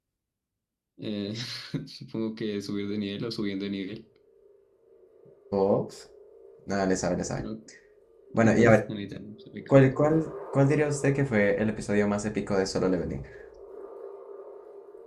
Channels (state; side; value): identical; both; correlation 1.00